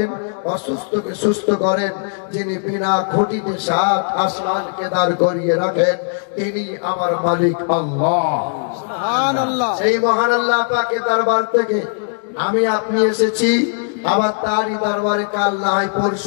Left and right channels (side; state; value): right; silent; 67 dB below the other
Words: অসুস্থকে সুস্থ করেন, যিনি বিনা খুঁটিতে 7 আসমানকে দাঁড় করিয়ে রাখেন, তিনি আমার মালিক আল্লাহ। সুবহানাল্লাহ। সেই মহান আল্লাহ পাকের দরবার থেকে আমি আপনি এসেছি, আবার তারই দরবারে কাল না হয়